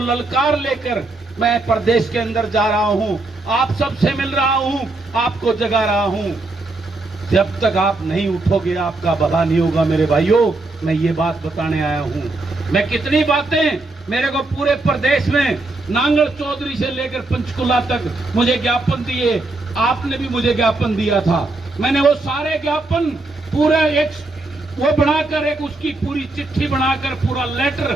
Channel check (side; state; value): left; quieter; 3.1 dB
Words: ललकार लेकर मैं प्रदेश के अंदर जा रहा हूं, आप सबसे मिल रहा हूं, आपको जगा रहा हूं। जब तक आप नहीं उठोगे आपका भला नहीं होगा मेरे भाइयों। मैं ये बात बताने आया हूं। मैं कितनी बातें, मेरे को पूरे प्रदेश में नांगल चौधरी से लेकर पंचकुला तक मुझे ज्ञापन दिए, आपने भी मुझे ज्ञापन दिया था। मैंने वो सारे ज्ञापन पूरा एक वो बनाकर, एक उसकी पूरी चिट्ठी बनाकर, पूरा